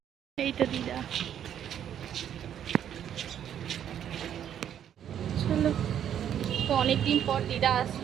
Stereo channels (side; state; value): left; quieter; 9.7 dB